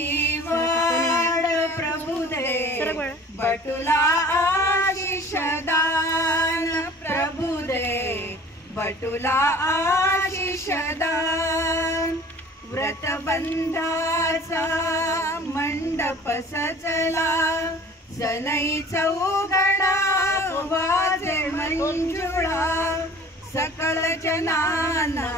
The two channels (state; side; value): normal; both; correlation 0.46